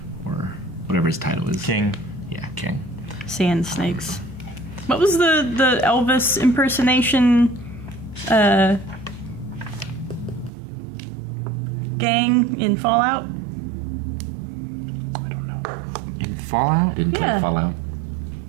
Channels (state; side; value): drops out; left; at 10.5 s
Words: or whatever his title is. King. Yeah, king. Sand Snakes. What was the Elvis impersonation gang in Fallout? In Fallout? Didn't Yeah. fall out.